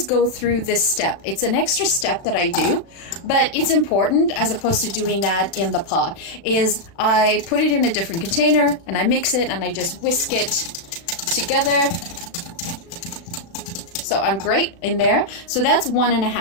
go through this step. It's an extra step that I do, but it's important, as opposed to doing that in the pot, is I put it in a different container and I mix it and I just whisk it together. So I'm great in there. So that's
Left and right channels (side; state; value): right; late; 36 ms